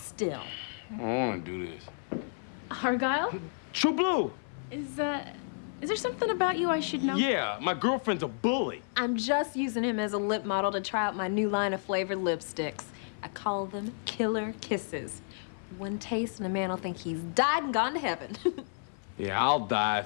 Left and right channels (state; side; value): silent; right; 57 dB below the other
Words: I don't want to do this. Argyle? True Blue. Is there something about you I should know? Yeah, my girlfriend's a bully. I'm just using him as a lip model to try out my new line of flavored lipsticks. I call them Killer Kisses. One taste and a man will think he's died and gone to heaven. Yeah, I'll die